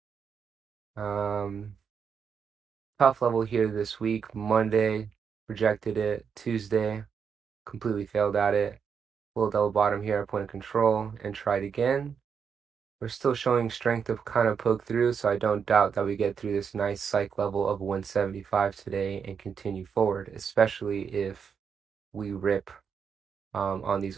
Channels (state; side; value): quieter; left; 6.6 dB